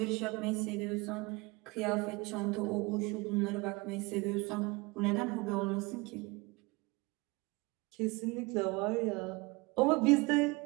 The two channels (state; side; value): quieter; left; 25.6 dB